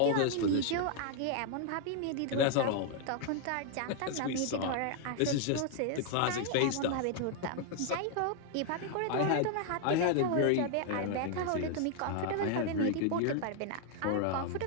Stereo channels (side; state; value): both; different; correlation 0.00